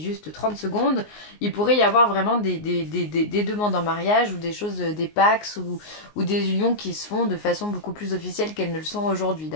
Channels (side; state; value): right; late; 19 ms